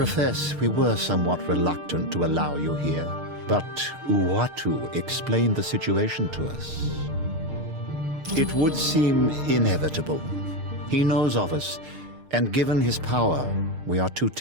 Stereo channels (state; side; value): late; left; 6.5 ms